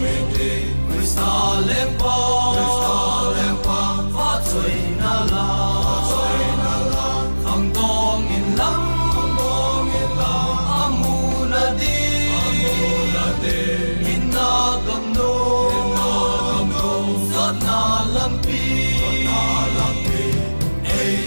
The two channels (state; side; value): inverted; both; correlation -1.00